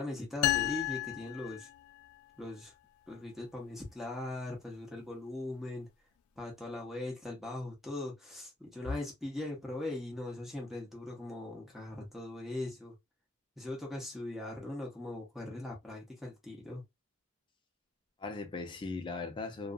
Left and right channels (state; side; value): quieter; right; 4.4 dB